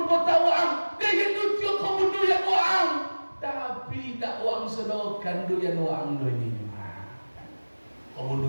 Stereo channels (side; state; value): both; inverted; correlation -1.00